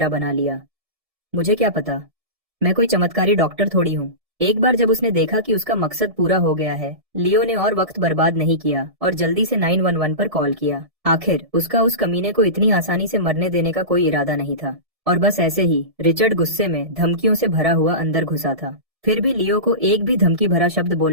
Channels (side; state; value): left; late; 1.7 ms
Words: बना लिया। मुझे क्या पता, मैं कोई चमत्कारी डॉक्टर थोड़ी हूँ। एक बार जब उसने देखा कि उसका मकसद पूरा हो गया है, लियो ने और वक्त बर्बाद नहीं किया और जल्दी से 911 पर कॉल किया। आखिर उसका उस कमीने को इतनी आसानी से मरने देने का कोई इरादा नहीं था। और बस ऐसे ही रिचर्ड गुस्से में धमकियों से भरा हुआ अंदर घुसा था। फिर भी लियो को एक भी धमकी भरा शब्द